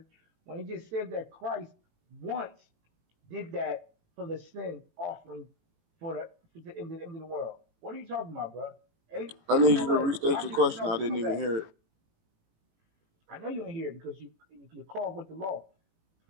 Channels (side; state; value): left; late; 18 ms